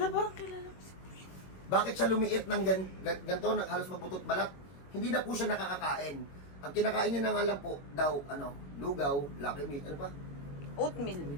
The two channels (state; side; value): late; right; 22 ms